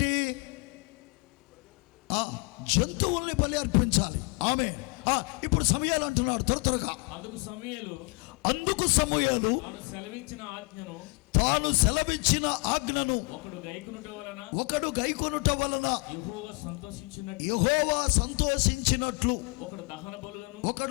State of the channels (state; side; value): quieter; right; 31.7 dB